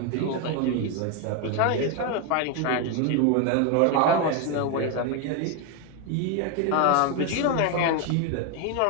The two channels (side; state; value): both; different; correlation 0.01